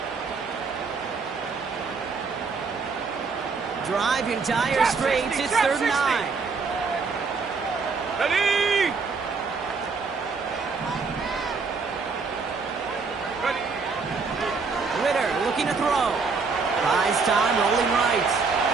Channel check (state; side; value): quieter; left; 4.7 dB